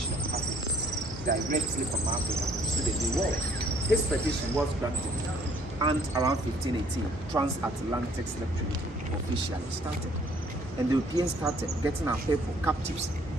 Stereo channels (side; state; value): both; normal; correlation 0.61